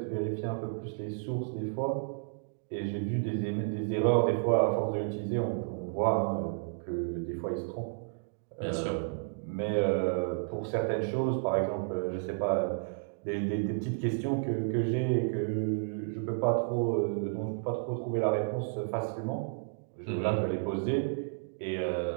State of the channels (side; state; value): left; silent; digital silence